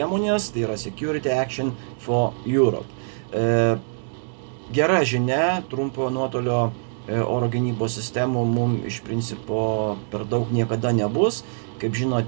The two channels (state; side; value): silent; left; digital silence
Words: tai yra Security Action for Europe. Gera žinia, trumpojo nuotolio oro gynybos sistemų mums iš principo per daug niekada nebus. Kaip